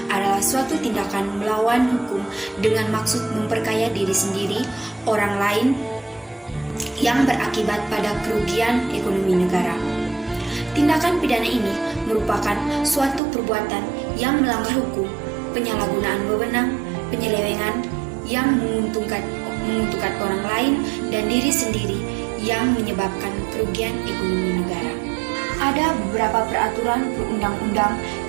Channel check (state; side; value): drops out; left; at 13.2 s